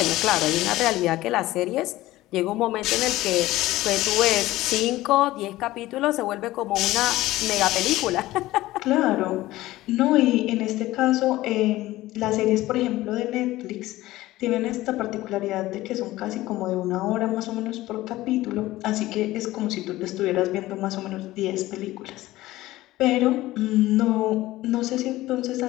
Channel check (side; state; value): right; quieter; 16.9 dB